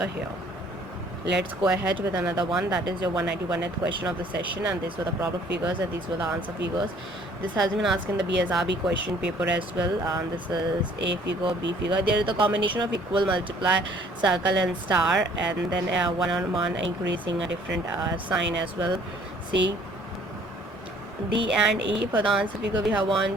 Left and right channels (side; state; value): both; normal; correlation 0.57